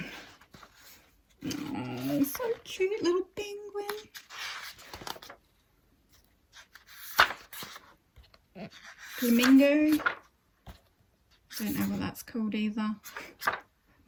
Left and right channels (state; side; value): identical; both; correlation 1.00